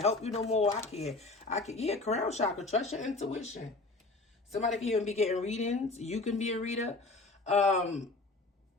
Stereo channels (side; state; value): right; quieter; 3.3 dB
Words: help you no more. I can. Yeah, crown chakra. Trust your intuition. Somebody can even be getting readings. You can be a reader.